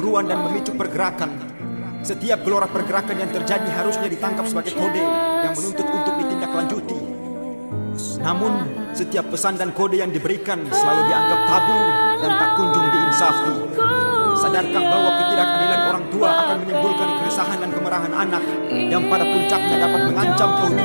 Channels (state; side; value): inverted; both; correlation -1.00